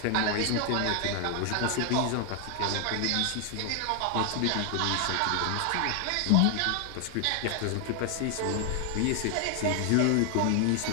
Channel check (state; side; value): different; both; correlation 0.00